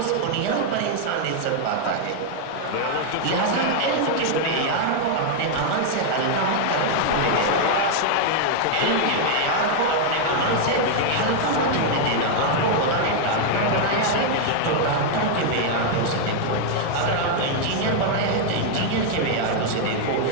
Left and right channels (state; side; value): different; both; correlation 0.00